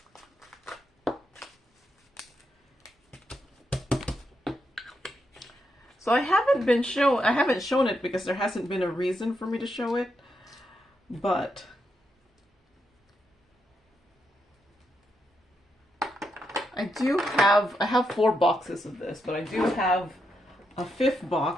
So I haven't shown it because there hasn't been a reason for me to show it, but I have 4 boxes of this, but I do have a 5th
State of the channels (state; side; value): normal; both; correlation 0.82